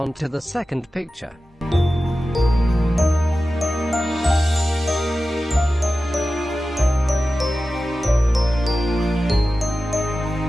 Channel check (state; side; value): normal; both; correlation 0.94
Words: to the second picture.